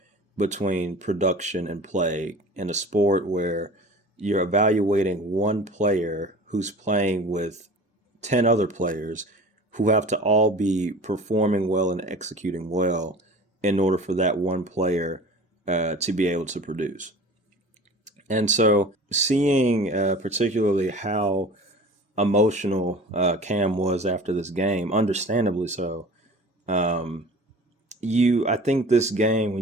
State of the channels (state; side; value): normal; both; correlation 0.40